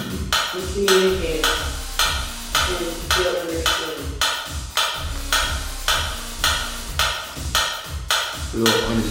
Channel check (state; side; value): identical; both; correlation 1.00